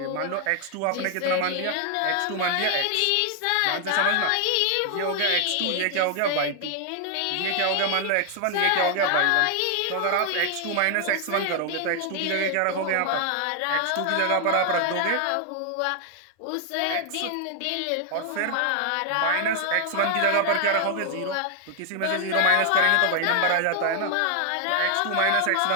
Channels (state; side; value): different; both; correlation 0.00